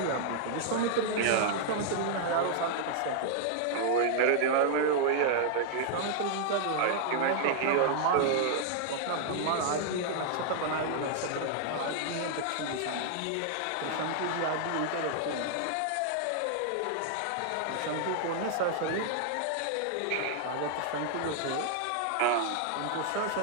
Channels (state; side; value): different; both; correlation 0.00